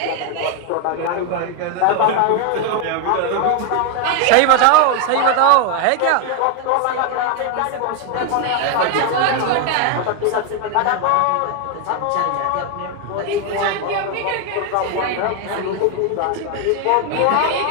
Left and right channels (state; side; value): different; both; correlation 0.01